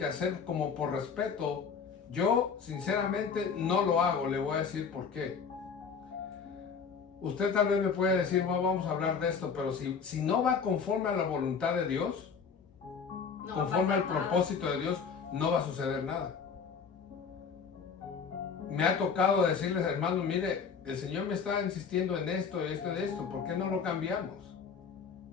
hacer como por respeto. Yo, sinceramente, no lo hago. Le voy a decir por qué. Usted tal vez me puede decir, no, vamos a hablar de esto, pero si no va conforme a la voluntad de Dios, No conforme al nada. propósito de Dios, no va a suceder nada. Me ha tocado decirles, hermanos, mire, el Señor me está insistiendo en esto y esto, ¿por qué no lo cambiamos?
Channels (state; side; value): quieter; right; 6.0 dB